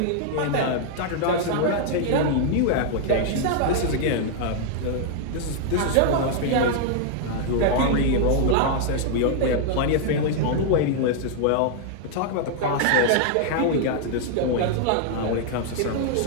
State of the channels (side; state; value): both; different; correlation -0.01